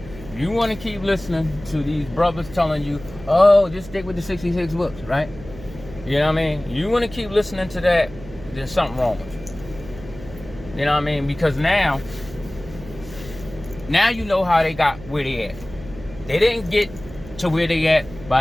if you want to keep listening to these brothers telling you, oh, just stick with the 66 books, right? You know what I mean? You want to keep listening to that, there's something wrong with you. You know what I mean? Because now, Now you know how they got where they at. They didn't get to where they at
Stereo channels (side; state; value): right; noise; hum, 16 dB below the sound